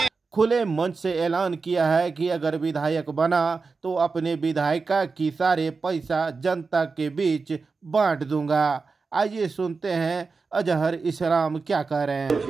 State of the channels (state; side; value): quieter; left; 4.5 dB